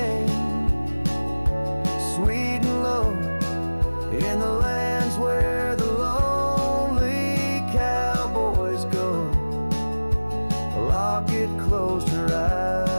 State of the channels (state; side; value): inverted; both; correlation -1.00